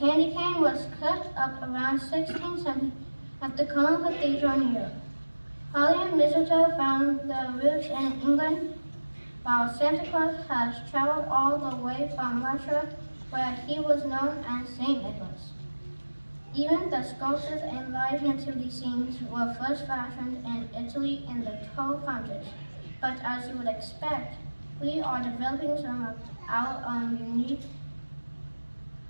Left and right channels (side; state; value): both; inverted; correlation -1.00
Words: cane was cut up around 1670 at the Cologne Cathedral in Europe. Holly and mistletoe found their roots in England, while Santa Claus has traveled all the way from Russia, where he was known as Saint Nicholas. Even the sculptures and live nativity scenes were first fashioned in Italy in the 1200s. But as you would expect, we are developing some of our own unique